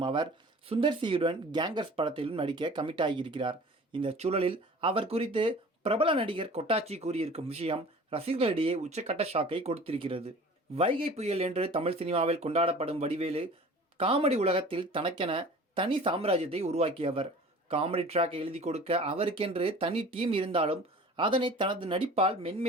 அவர் சுந்தர் சியுடன் கேங்கர்ஸ் படத்திலும் நடிக்க கமிட் ஆகியிருக்கிறார். இந்த சூழலில் அவர் குறித்து பிரபல நடிகர் கொட்டாச்சி கூறியிருக்கும் விஷயம் ரசிகர்களிடையே உச்சக்கட்ட ஷாக்கை கொடுத்திருக்கிறது. வைகை புயல் என்று தமிழ் சினிமாவில் கொண்டாடப்படும் வடிவேலு காமெடி உலகத்தில் தனக்கென தனி சாம்ராஜ்யத்தை உருவாக்கியவர். காமெடி ட்ராக் எழுதி கொடுக்க அவருக்கென்று தனி டீம் இருந்தாலும் அதனை தனது நடிப்பால்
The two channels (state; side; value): normal; both; correlation 0.43